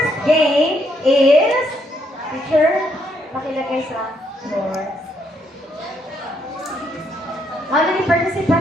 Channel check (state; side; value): normal; both; correlation 0.74